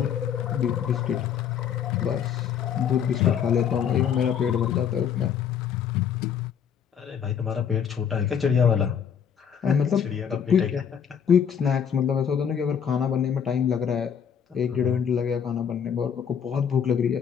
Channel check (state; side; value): quieter; right; 7.9 dB